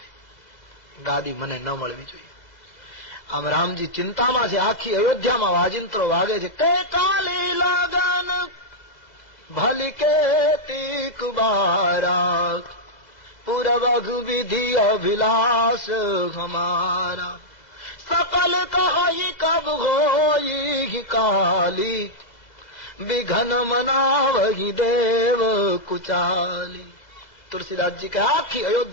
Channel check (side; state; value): right; late; 2.0 ms